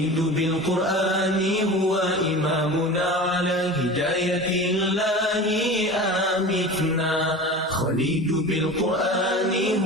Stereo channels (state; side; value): normal; both; correlation 0.34